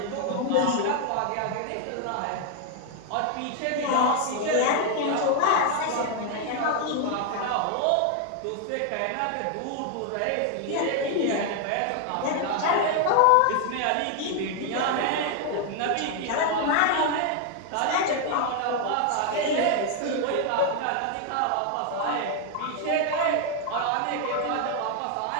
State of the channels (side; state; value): both; different; correlation 0.00